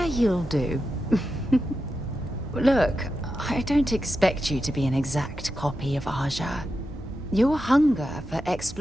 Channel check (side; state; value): both; normal; correlation 0.89